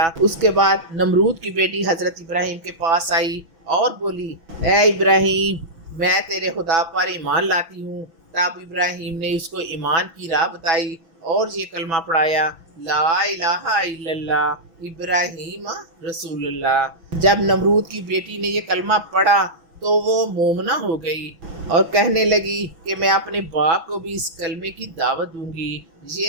اس کے بعد نمرود کی بیٹی حضرت ابراہیم کے پاس آئی اور بولی اے ابراہیم، میں تیرے خدا پر ایمان لاتی ہوں۔ تب ابراہیم نے اس کو ایمان کی راہ بتائی اور یہ کلمہ پڑھایا لا الہ الا اللہ ابراہیم رسول اللہ۔ جب نمرود کی بیٹی نے یہ کلمہ پڑھا تو وہ مومنہ ہو گئی اور کہنے لگی کہ میں اپنے باپ کو بھی اس کلمے کی دعوت دوں گی۔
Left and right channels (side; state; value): left; late; 6.1 ms